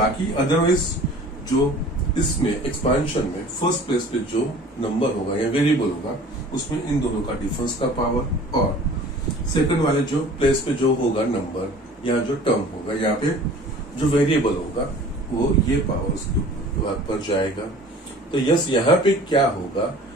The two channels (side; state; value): both; normal; correlation 0.46